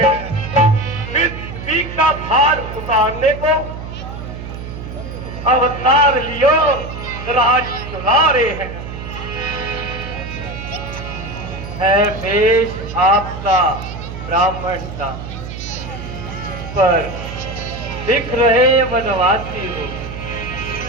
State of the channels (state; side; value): noise; right; hum, 9 dB below the sound